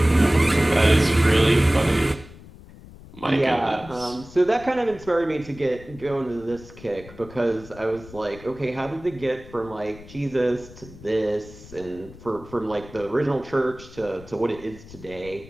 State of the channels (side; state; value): left; noise; rumble, 19 dB below the sound